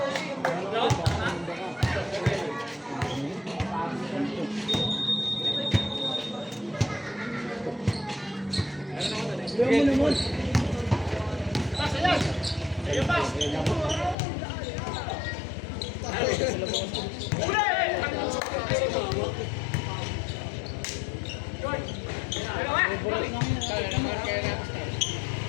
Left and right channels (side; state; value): right; drops out; at 14.2 s